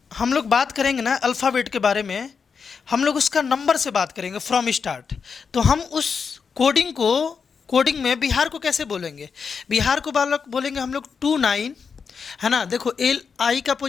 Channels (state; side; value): quieter; right; 5.9 dB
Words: हम लोग बात करेंगे ना अल्फ़ाबेट के बारे में, हम लोग उसका नंबर से बात करेंगे फ्रॉम स्टार्ट। तो हम उस कोडिंग में बिहार को कैसे बोलेंगे, बिहार को बालक बोलेंगे हम लोग 29, है ना। देखो एल आई का